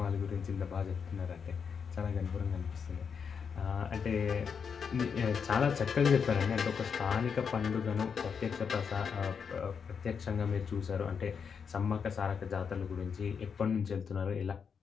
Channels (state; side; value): quieter; right; 6.4 dB